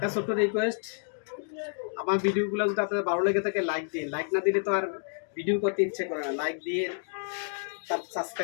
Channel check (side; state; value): right; silent; 58 dB below the other